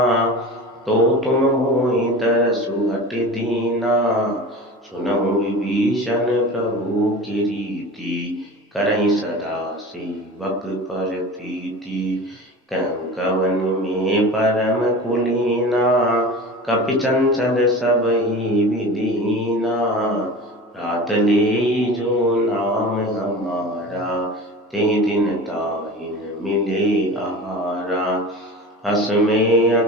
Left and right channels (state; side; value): normal; both; correlation 0.35